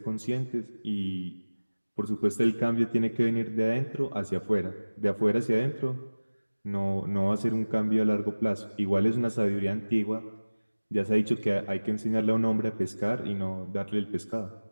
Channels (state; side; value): inverted; both; correlation -1.00